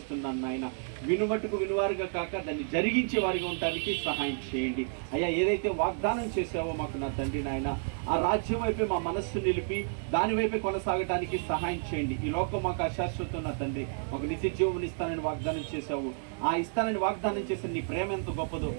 నాయన. వినుమట్టుకు వినువారుగా కాక దాన్ని జరిగించే వారిగా ఉండడానికి సహాయం చేయండి అయ్యా. ఏదైతే వాగ్దానం చేసావో మాకు నా తండ్రి నాయన, ఆ రాజ్యం వైపే మా మనస్సు నిలిపి దాని వైపే కొనసాగడానికి సహాయం చేయండి. ఈ లోకం మాకు అశాశ్వతం నా తండ్రి, మాకు నిత్య జీవం ఇస్తానని వాగ్దానం చేశావు. ఆ ఇస్తానని వాగ్దానం చేసిన నీ ప్రేమ ఎంత గొప్పదో,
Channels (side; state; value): left; silent; digital silence